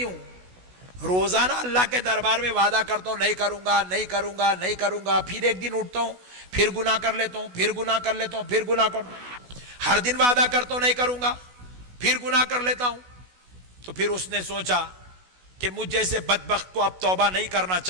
ہوں، روزانہ اللہ کے دربار میں وعدہ کرتا ہوں نہیں کروں گا، نہیں کروں گا، نہیں کروں گا، پھر ایک دن اٹھتا ہوں، پھر گناہ کر لیتا ہوں، پھر گناہ کر لیتا ہوں، پھر گناہ کرتا ہوں. ہر دن وعدہ کرتا ہوں نہیں کروں گا، پھر گناہ کر لیتا ہوں. تو پھر اس نے سوچا کہ مجھ جیسے بدبخت کو اب توبہ نہیں کرنا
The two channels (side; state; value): left; late; 16 ms